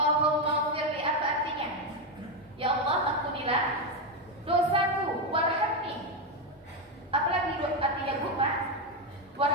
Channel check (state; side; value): normal; both; correlation 0.07